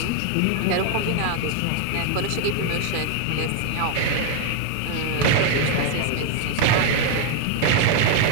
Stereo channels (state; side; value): different; both; correlation 0.00